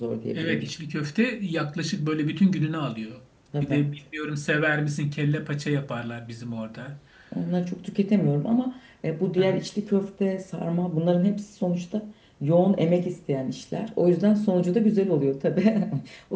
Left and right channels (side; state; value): both; identical; correlation 1.00